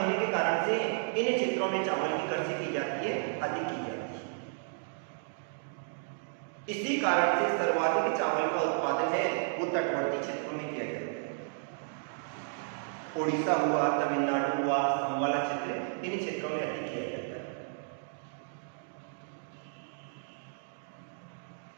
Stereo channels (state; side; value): silent; left; digital silence